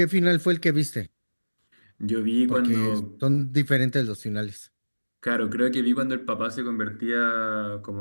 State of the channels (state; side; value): inverted; both; correlation -1.00